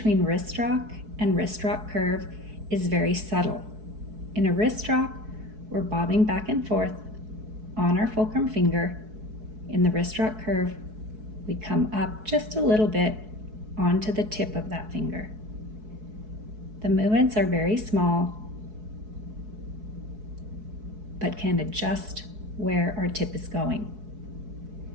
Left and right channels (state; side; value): late; left; 4.6 ms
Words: wrist rock and wrist rock curve is very subtle. In a wrist rock, we're bobbing back and forth on our fulcrum finger. In the wrist rock curve, we come up just a little bit onto the tip of that finger. The movements are very small, but can adjust where our tip is going.